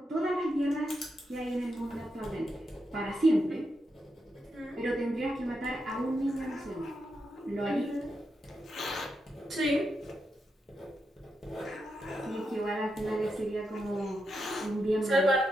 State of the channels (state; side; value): normal; both; correlation 0.85